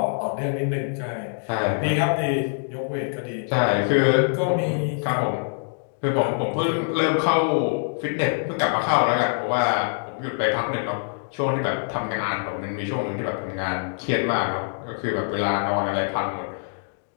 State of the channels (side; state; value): right; silent; digital silence